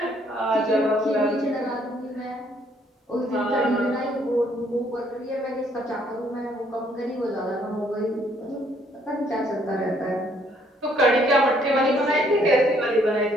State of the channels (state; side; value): normal; both; correlation 0.66